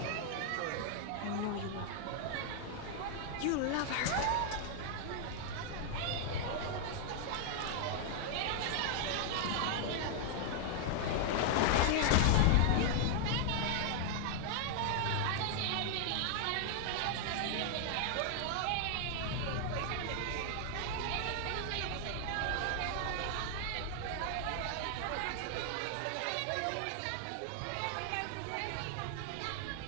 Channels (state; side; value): different; both; correlation 0.00